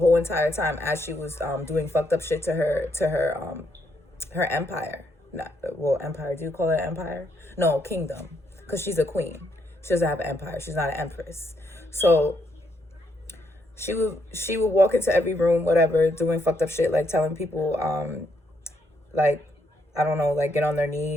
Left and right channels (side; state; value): both; normal; correlation 0.75